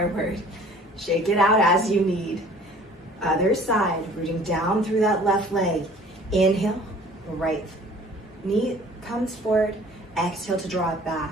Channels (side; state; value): both; normal; correlation 0.51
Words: Shake it out as you need. Other side, rooting down through that left leg. Inhale, right knee comes forward. Exhale to draw it back.